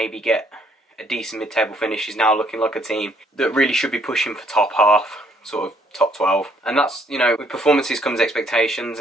get a decent mid-table finish is now looking like a team that really should be pushing for top half, sort of top 12. And that's, you know, with performances comes expectations,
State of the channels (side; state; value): both; normal; correlation 0.66